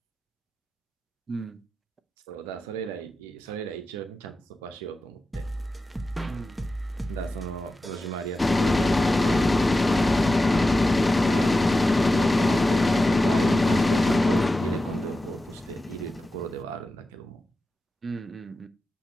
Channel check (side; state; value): both; normal; correlation 0.92